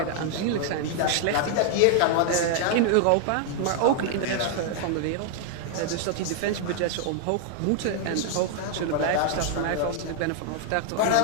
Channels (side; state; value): both; different; correlation 0.00